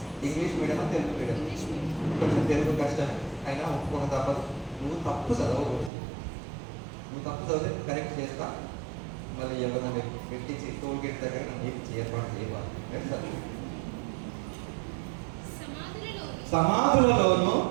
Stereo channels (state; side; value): drops out; left; at 5.9 s